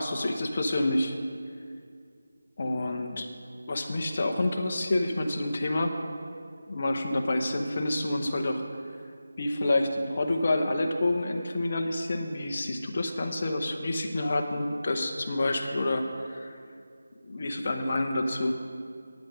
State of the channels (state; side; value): inverted; both; correlation -0.94